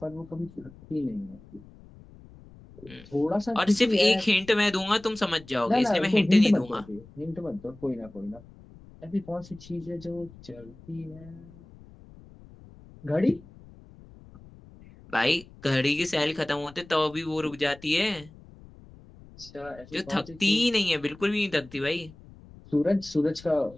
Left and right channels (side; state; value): left; noise; rumble, 21 dB below the sound